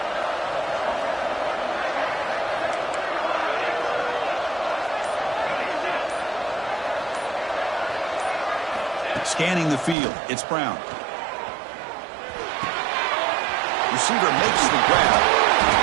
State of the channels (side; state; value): left; drops out; at 10.0 s